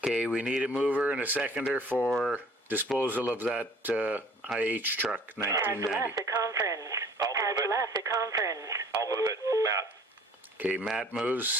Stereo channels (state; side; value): normal; both; correlation 0.52